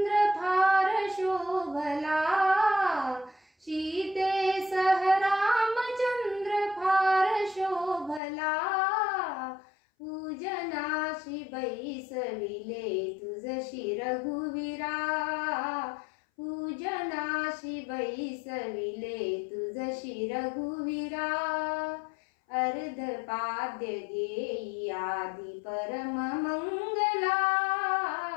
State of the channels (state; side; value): drops out; right; at 8.2 s